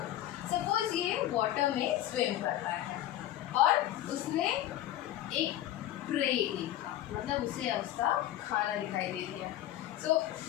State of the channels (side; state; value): right; quieter; 13.2 dB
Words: सपोज ये वाटर में स्विम कर रहा है और उसने एक प्रे देखा, मतलब उसे उसका खाना दिखाई दे दिया। सो